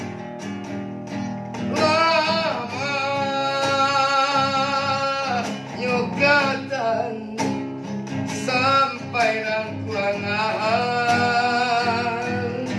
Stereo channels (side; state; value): both; identical; correlation 1.00